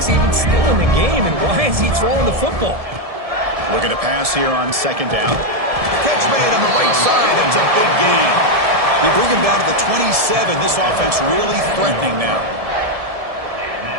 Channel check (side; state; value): left; late; 1.7 ms